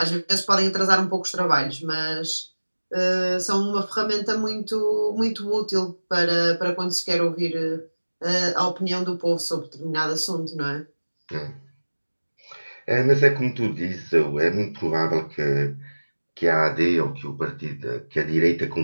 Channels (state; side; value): inverted; both; correlation -1.00